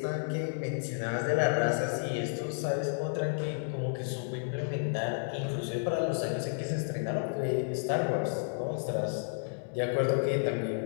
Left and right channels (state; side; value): silent; right; digital silence